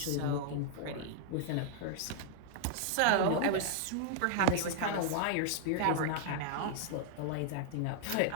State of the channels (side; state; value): both; different; correlation -0.01